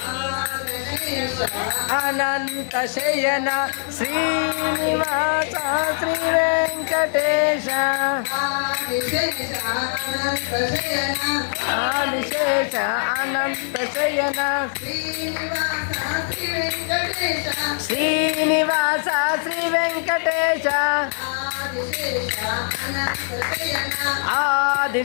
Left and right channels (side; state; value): right; silent; digital silence